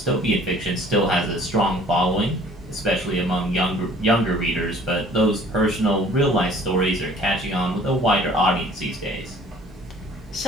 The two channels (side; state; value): both; normal; correlation 0.52